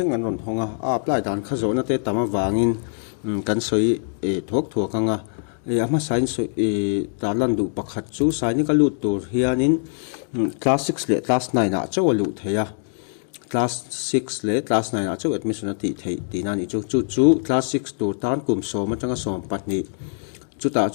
an ron honga apply dan kha zona te tama wangin kan soi thok thok anga ama science talan du pakhat chu Sainik alu tur hianin class 6 le class 9 a chawalu theya class 6 le class 9 a chaw admission ati thei tina ni chu class 6 tur tan kum som atanga som patni chuta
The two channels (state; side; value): silent; right; digital silence